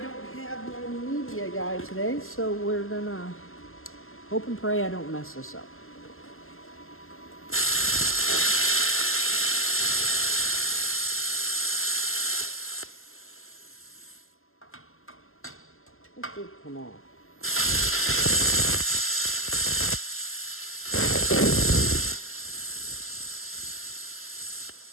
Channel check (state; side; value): late; right; 0.62 ms